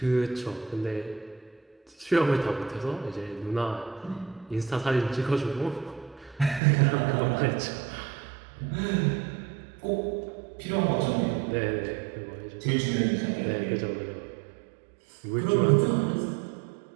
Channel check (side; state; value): left; drops out; at 6.6 s